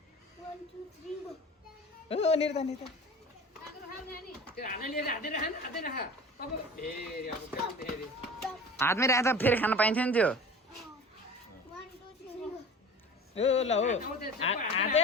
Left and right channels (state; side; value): normal; both; correlation 0.38